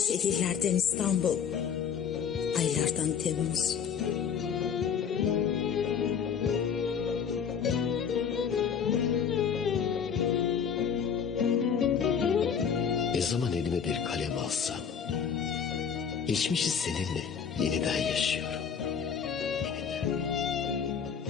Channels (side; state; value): right; quieter; 7.2 dB